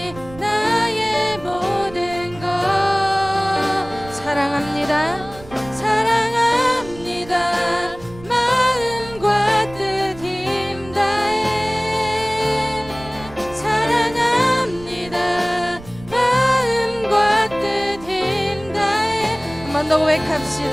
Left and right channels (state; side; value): noise; right; rumble, 18 dB below the sound